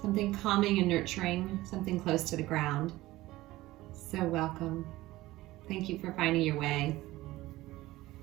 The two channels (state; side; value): quieter; left; 17.7 dB